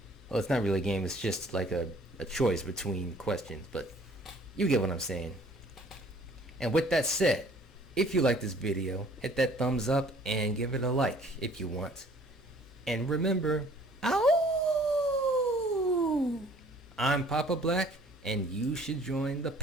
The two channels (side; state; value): both; normal; correlation 0.55